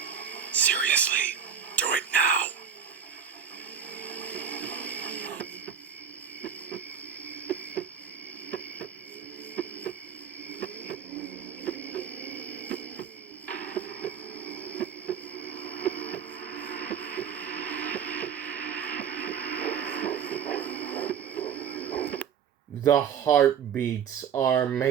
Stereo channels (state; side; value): quieter; left; 7.8 dB